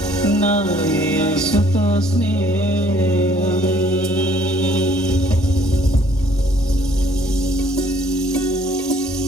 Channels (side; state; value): both; normal; correlation 0.61